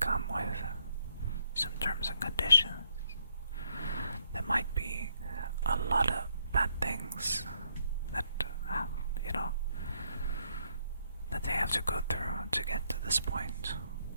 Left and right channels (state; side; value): inverted; both; correlation -0.73